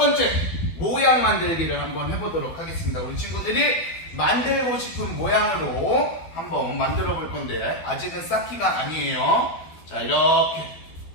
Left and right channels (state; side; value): late; right; 12 ms